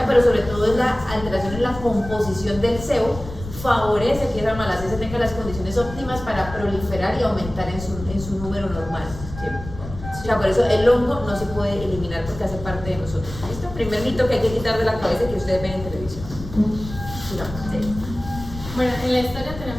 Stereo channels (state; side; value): noise; left; rumble, 11 dB below the sound